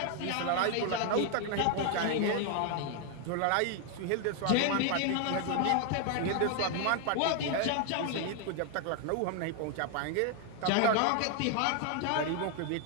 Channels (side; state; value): both; different; correlation 0.00